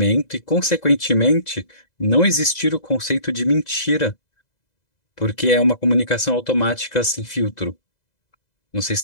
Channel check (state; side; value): late; right; 2.0 ms